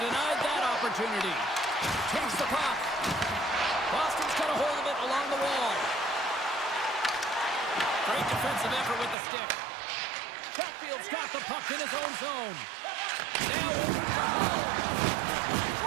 that opportunity. Takes the puck. Boston's got a hold of it along the wall. Great defensive effort with the stick. Chatfield's got the puck in his own zone. Now over to Hull.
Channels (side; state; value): left; drops out; at 9.2 s